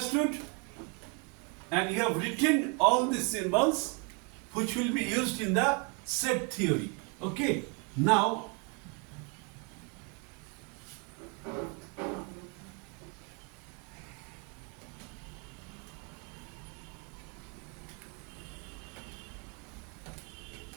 and you have written all the symbols which will be used in the set theory. Okay? Now,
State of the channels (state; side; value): quieter; left; 32.1 dB